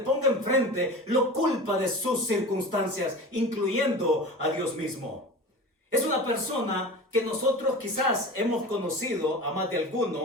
enfrente, lo culpa de sus circunstancias, incluyendo a Dios mismo. Es una persona que nosotros quizás hemos conocido a más de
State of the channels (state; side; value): normal; both; correlation 0.33